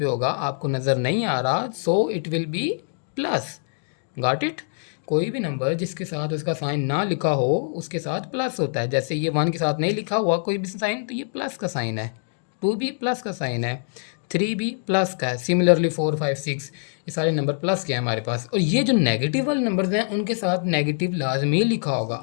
होगा, आपको नज़र नहीं आ रहा, सो it will B plus. Got it? कोई भी नंबर जिसके साथ उसका साइन ना लिखा हो उसके साथ प्लस होता है। जैसे ये 1 के साथ नहीं लिखा हुआ कोई भी साइन, तो ये प्लस का साइन है। 2 भी प्लस का साइन है, 3 भी प्लस का है। सिमिलरली 4 5 6 ये सारे नंबर प्लस के हैं हमारे पास। और ये जो नेगेटिव वाले नंबर्स हैं उनके साथ नेगेटिव लाजमी लिखा होगा।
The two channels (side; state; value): right; silent; digital silence